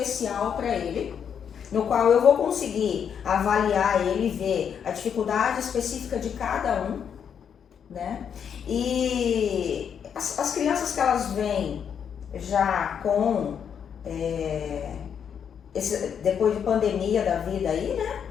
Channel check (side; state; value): right; quieter; 7.8 dB